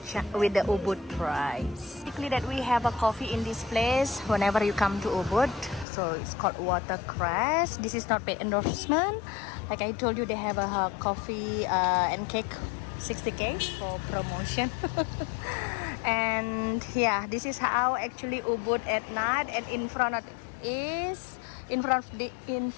Ubud price. Basically, that we have a coffee in this place whenever you come to Ubud. So it's called Watercress. This is not paid endorsement. Like I told you, they have a coffee and cake 60k for promotion. And yeah, this is how actually Ubud at night. And in front of this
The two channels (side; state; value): right; drops out; at 5.9 s